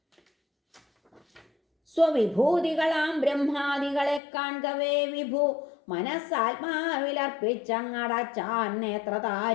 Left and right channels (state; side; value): drops out; right; at 4.2 s